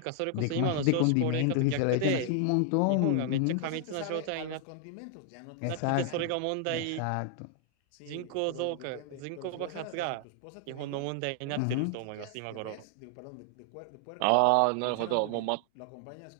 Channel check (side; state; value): both; different; correlation 0.00